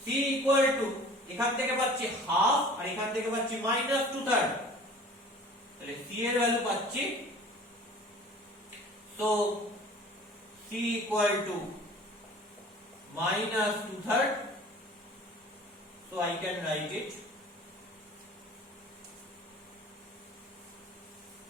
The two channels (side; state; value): both; normal; correlation 0.46